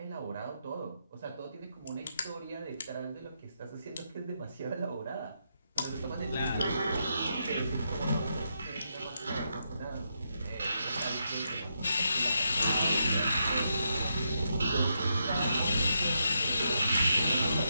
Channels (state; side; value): inverted; both; correlation -0.82